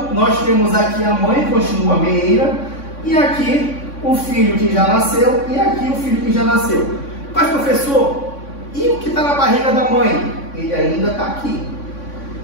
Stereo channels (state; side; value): late; right; 3.6 ms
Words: nós temos aqui a mãe continua meeira e aqui o filho que já nasceu e aqui o filho que já nasceu. Mas, professor, e o que está na barriga da mãe? Ele ainda está aqui.